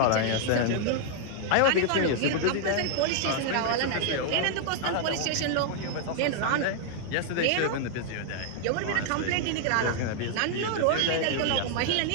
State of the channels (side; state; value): both; different; correlation -0.01